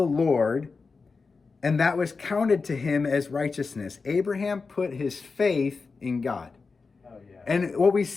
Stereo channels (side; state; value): right; quieter; 4.5 dB